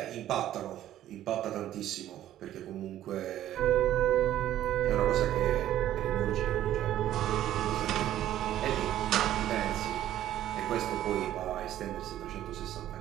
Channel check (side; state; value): left; quieter; 12.5 dB